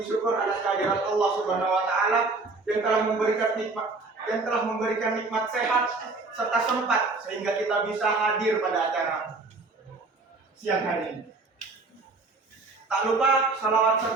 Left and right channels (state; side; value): quieter; left; 3.6 dB